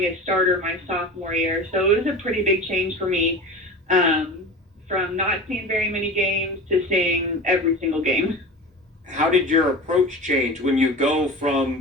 a starter my sophomore year. So it was a pretty big change for me, from not seeing very many games to seeing every single game. How did your approach change when you go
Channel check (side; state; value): both; normal; correlation 0.32